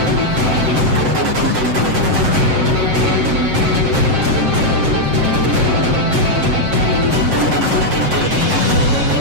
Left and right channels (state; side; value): late; left; 7.6 ms